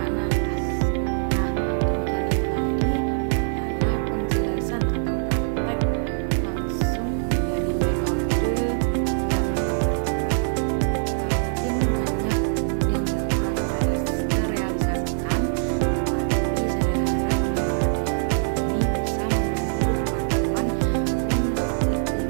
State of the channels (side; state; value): left; silent; digital silence